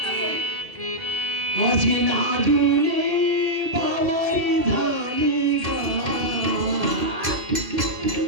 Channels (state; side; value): late; left; 1.8 ms